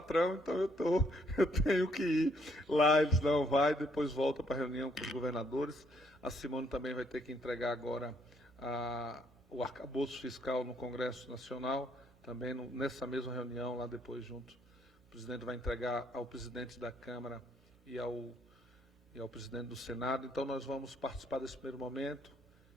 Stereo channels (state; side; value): normal; both; correlation 0.69